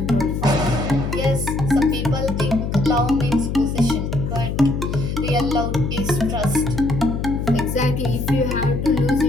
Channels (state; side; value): noise; left; hum, 3 dB below the sound